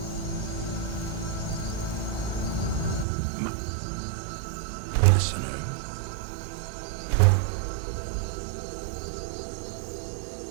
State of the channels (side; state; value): left; drops out; at 3.1 s